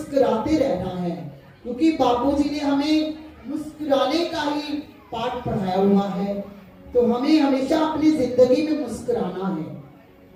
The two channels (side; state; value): both; identical; correlation 1.00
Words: रहना है, क्योंकि बापूजी ने हमें मुस्कुराने का ही पाठ पढ़ाया हुआ है। तो हमें हमेशा अपनी जिंदगी में मुस्कुराना है।